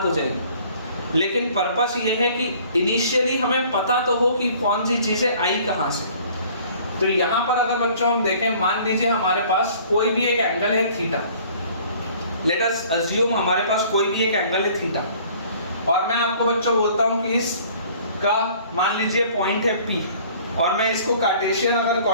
हो जाएंगे। लेकिन पर्पस ये है कि इनिशियली हमें पता तो हो कि कौन सी चीजें आई कहां से। तो यहाँ पर अगर बच्चों हम देखें, मान लीजिए हमारे पास कोई भी एक एंगल है थीटा। लेट अस अज्यूम हमारे पास कोई भी एक एंगल है थीटा, और मैं आपको बच्चों बोलता हूँ कि इसका मान लीजिए पॉइंट है P, और मैं इसको कार्टेशियन अगर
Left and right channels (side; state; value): both; inverted; correlation -0.53